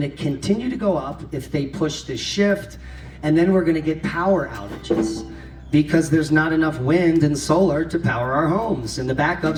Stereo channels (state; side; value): identical; both; correlation 1.00